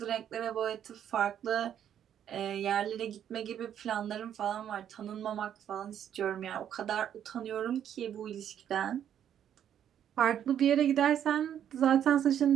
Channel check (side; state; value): left; quieter; 9.7 dB